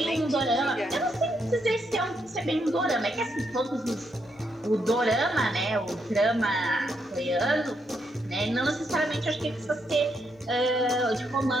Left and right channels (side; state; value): both; normal; correlation 0.78